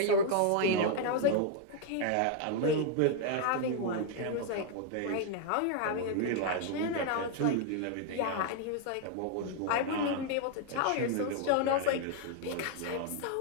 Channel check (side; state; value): both; different; correlation 0.00